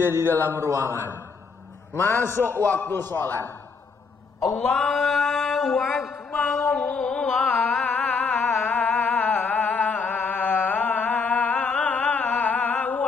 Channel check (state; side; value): quieter; right; 4.9 dB